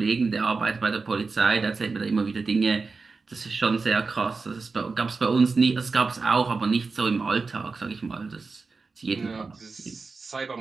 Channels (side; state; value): left; quieter; 4.3 dB